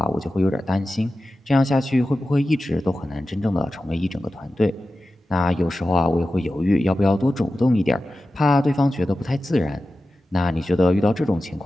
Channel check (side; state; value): both; normal; correlation 0.94